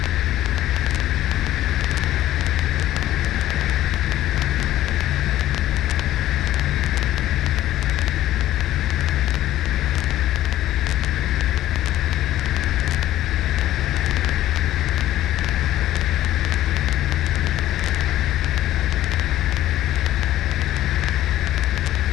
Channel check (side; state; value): right; quieter; 13.8 dB